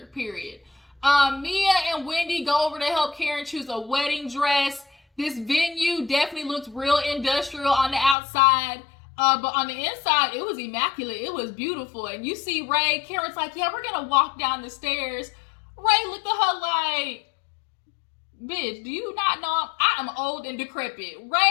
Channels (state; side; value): drops out; right; at 8.2 s